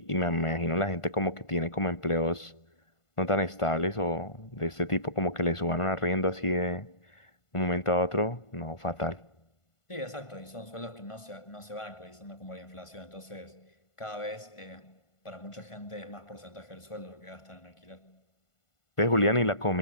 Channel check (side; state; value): right; late; 1.5 ms